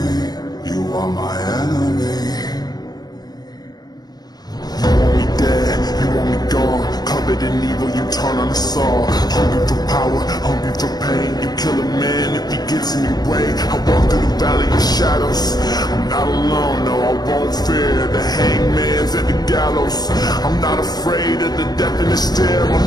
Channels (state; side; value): late; right; 0.19 ms